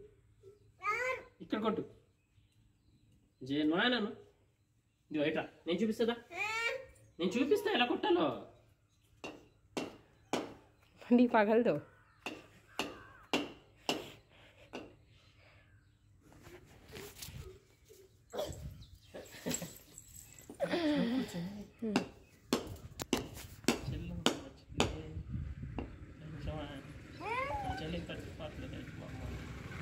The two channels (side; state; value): both; identical; correlation 1.00